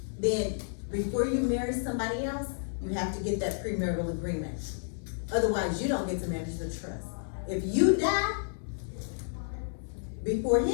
then Before you marry somebody else, you have to get that premarital agreement. Otherwise, you don't get to manage the trust. If you die before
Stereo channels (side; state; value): right; silent; 57 dB below the other